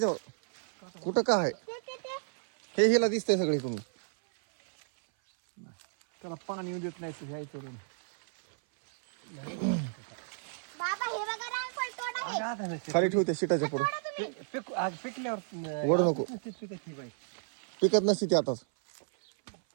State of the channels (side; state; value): left; silent; 56 dB below the other